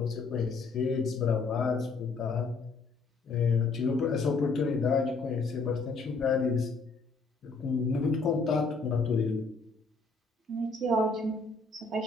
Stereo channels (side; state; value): right; quieter; 4.0 dB